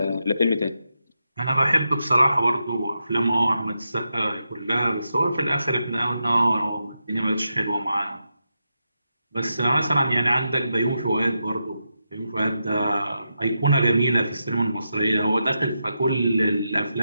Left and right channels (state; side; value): inverted; both; correlation -0.86